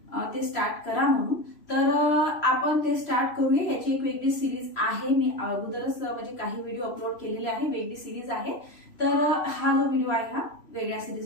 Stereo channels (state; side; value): late; right; 3.0 ms